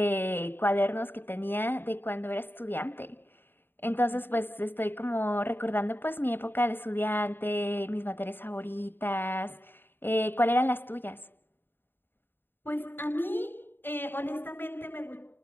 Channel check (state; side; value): late; right; 0.098 ms